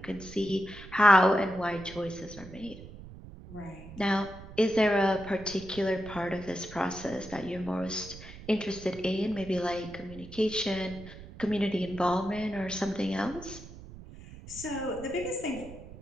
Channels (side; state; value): right; noise; rumble, 16 dB below the sound